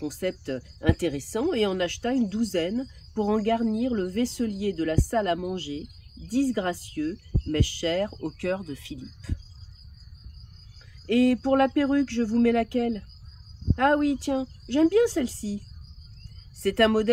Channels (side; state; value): both; identical; correlation 1.00